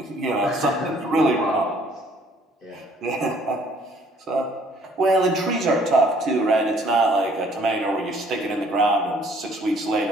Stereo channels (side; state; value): both; normal; correlation 0.60